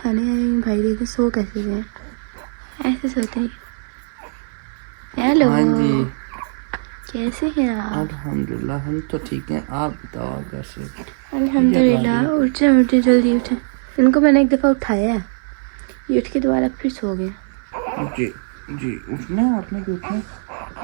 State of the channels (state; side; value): silent; left; 57 dB below the other